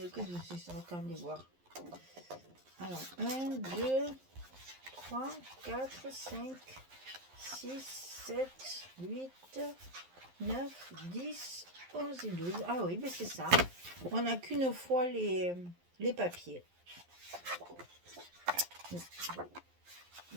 qu'est-ce que c'est ça? Attendez voir. Alors, 1, 2, 3, 4, 5, 6, 7, 8, 9, 10, 11 et 12. Ah oui, mais c'est ça. On n'a qu'une fois les papiers.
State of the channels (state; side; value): late; left; 11 ms